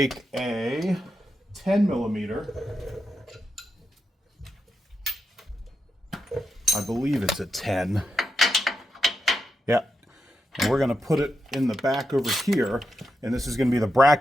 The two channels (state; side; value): normal; both; correlation 0.86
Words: a 10 millimeter. I believe it's a 10. Yeah. And we're going to put it in the back over here. And this is going to be the